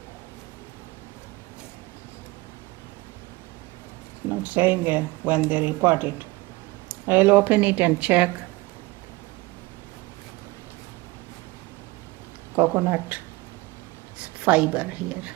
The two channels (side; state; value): left; quieter; 22.2 dB